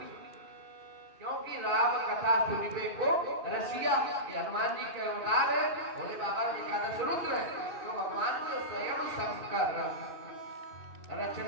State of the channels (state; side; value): late; left; 2.5 ms